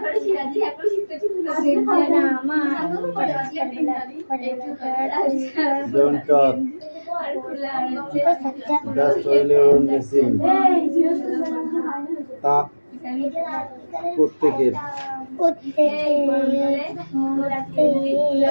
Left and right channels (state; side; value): inverted; both; correlation -1.00